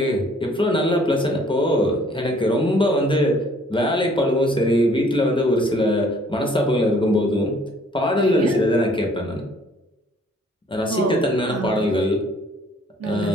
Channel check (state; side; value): normal; both; correlation 0.59